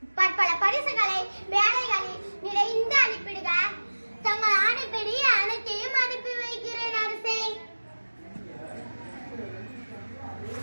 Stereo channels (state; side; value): inverted; both; correlation -1.00